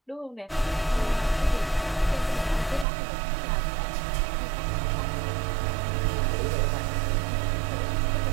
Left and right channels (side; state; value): left; drops out; at 2.9 s